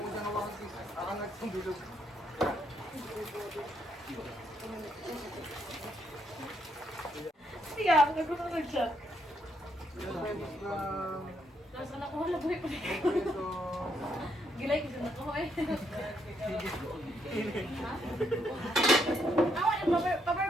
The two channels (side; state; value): both; normal; correlation 0.75